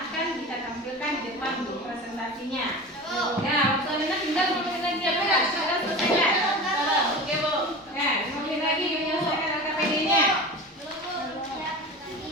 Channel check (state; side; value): normal; both; correlation 0.32